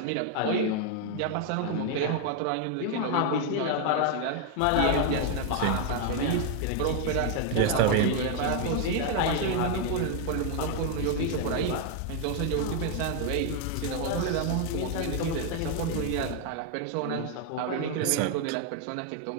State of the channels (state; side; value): different; both; correlation 0.00